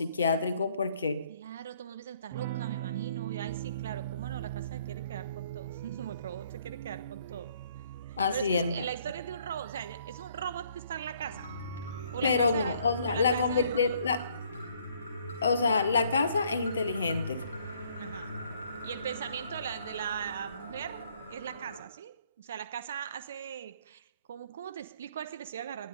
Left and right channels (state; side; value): inverted; both; correlation -0.63